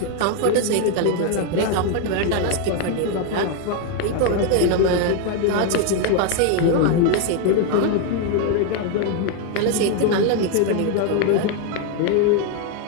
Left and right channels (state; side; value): different; both; correlation 0.01